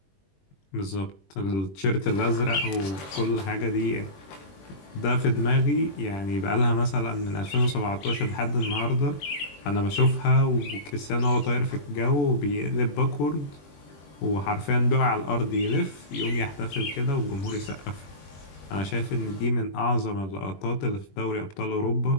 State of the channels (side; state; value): right; late; 21 ms